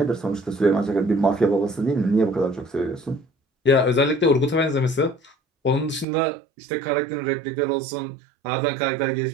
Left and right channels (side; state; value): left; drops out; at 6.1 s